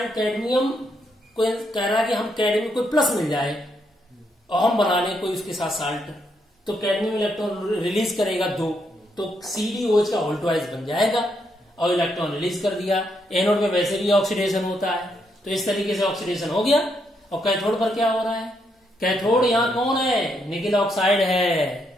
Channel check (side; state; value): both; normal; correlation 0.77